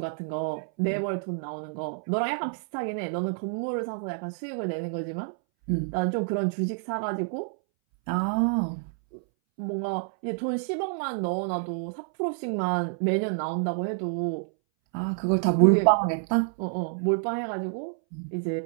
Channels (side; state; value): left; silent; 59 dB below the other